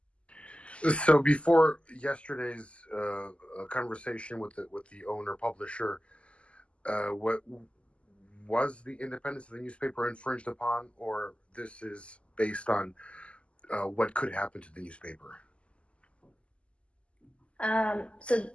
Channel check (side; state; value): right; late; 0.056 ms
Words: So before yesterday's conversation with the owner publisher, was the independence of the newspaper infringed upon, or this is based on what could happen to the newspaper? So